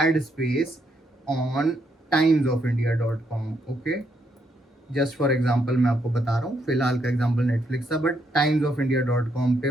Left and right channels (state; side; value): normal; both; correlation 0.76